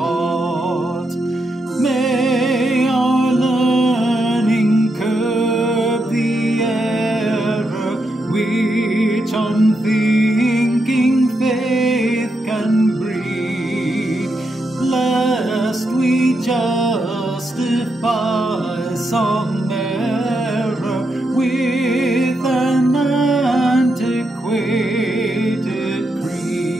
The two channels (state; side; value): normal; both; correlation 0.83